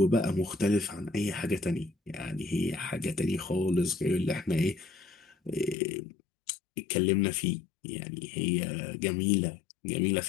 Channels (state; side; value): drops out; right; at 5.8 s